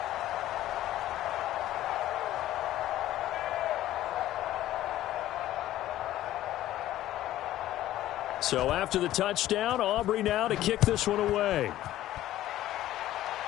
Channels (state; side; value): quieter; right; 14.0 dB